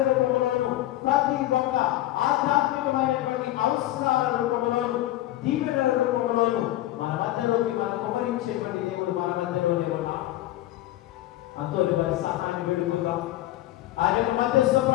రూపంలోను, ప్రతి ఒక్క ఆధ్యాత్మికమైనటువంటి అవసరాల రూపంలోను, దీవెనల రూపంలోను మన మధ్యలోకి మనం కుమరించేటువంటి దేవుడు మన మధ్యలోనే ఉన్నా. అంతోని వారి సహాయాన్ని వేడుకుందాం, ఆయన మధ్యస్థ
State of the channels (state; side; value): quieter; right; 15.2 dB